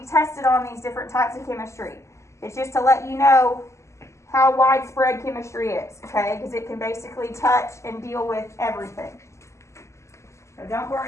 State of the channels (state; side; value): late; right; 0.14 ms